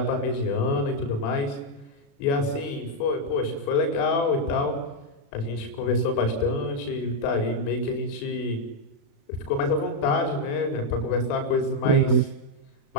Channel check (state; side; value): late; right; 36 ms